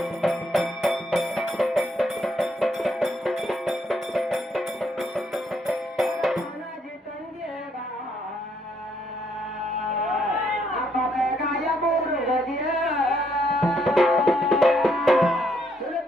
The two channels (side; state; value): both; normal; correlation 0.72